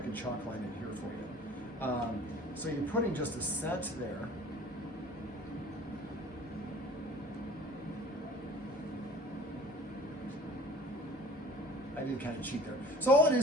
can chalk line it here for you. So you're putting just a scent there. I did kind of cheat there. So all it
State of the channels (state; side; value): normal; both; correlation 0.46